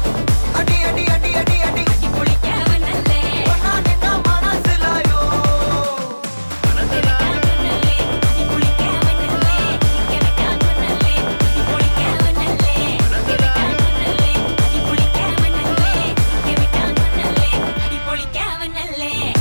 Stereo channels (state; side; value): inverted; both; correlation -1.00